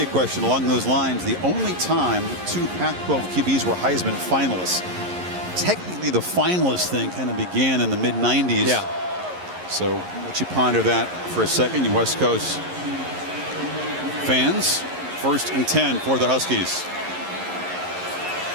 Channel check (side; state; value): left; late; 11 ms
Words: question along those lines: the only time 2 Pac-12 QBs were Heisman finalists. Technically, the finalist thing kind of began in the mid-90s. Yeah. So let you ponder that for a second, you West Coast fans. 1st and 10 for the Huskies.